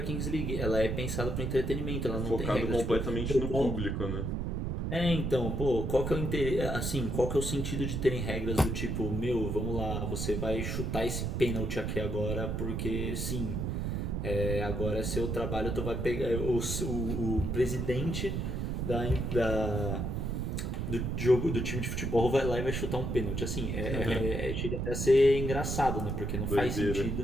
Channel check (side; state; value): right; noise; rumble, 1 dB below the sound